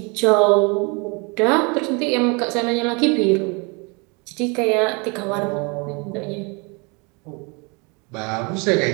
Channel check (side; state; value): left; quieter; 31.1 dB